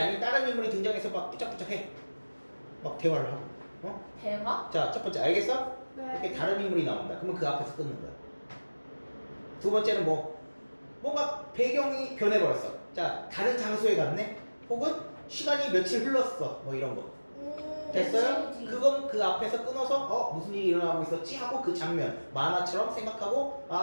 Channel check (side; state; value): both; inverted; correlation -1.00